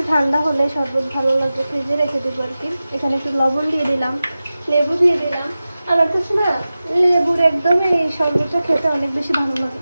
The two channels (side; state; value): both; inverted; correlation -0.95